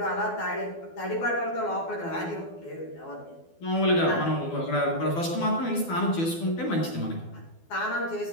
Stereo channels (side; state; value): right; late; 12 ms